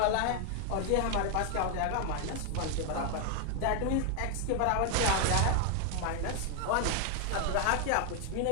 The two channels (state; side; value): different; both; correlation 0.00